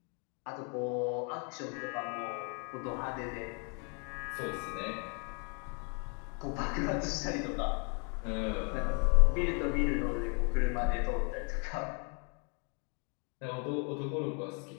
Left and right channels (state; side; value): quieter; right; 38.0 dB